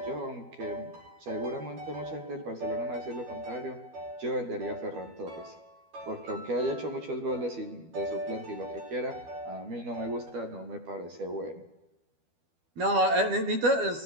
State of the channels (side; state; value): left; late; 12 ms